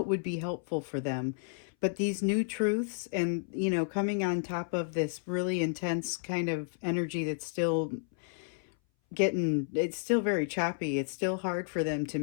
would be helpful for them. But these new truths and, coming on top of this really intense kind of energy that's still it's still very choppy. It's still hard for them to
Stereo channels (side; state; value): right; silent; 57 dB below the other